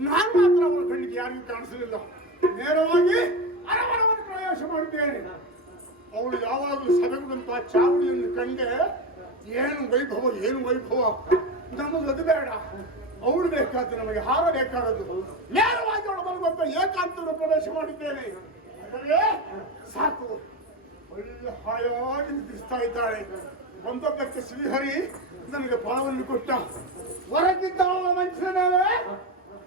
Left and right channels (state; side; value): normal; both; correlation 0.20